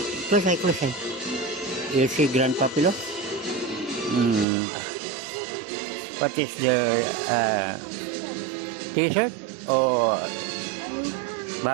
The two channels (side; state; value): left; drops out; at 4.5 s